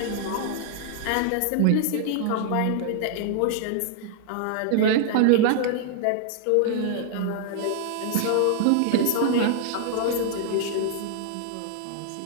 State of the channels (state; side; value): different; both; correlation -0.01